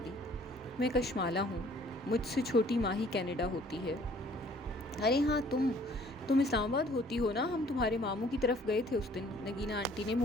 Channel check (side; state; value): both; normal; correlation 0.57